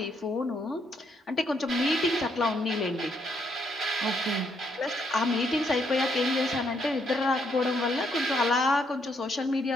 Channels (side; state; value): both; normal; correlation 0.74